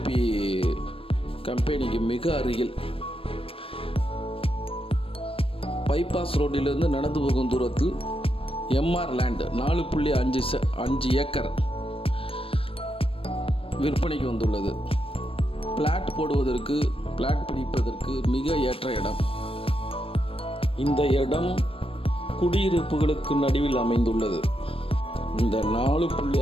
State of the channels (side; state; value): right; late; 0.27 ms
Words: கம்பெனிக்கு மிக அருகில் பைபாஸ் ரோட்டிலிருந்து நடந்து போகும் தூரத்தில் எம்ஆர் லேண்ட் 4.5 ஏக்கர் விற்பனைக்கு வந்துள்ளது. பிளாட் போடுவதற்கு, பிளாட் பிடிப்பதற்கு மிக ஏற்ற இடம். இந்த இடம் குடியிருப்புகளுக்கு நடுவில் அமைந்துள்ளது. இந்த